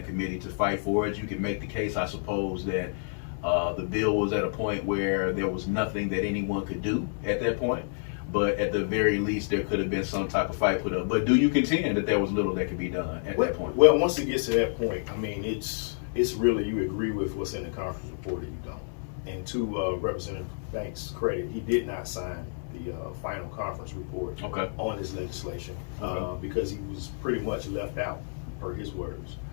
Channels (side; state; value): right; silent; digital silence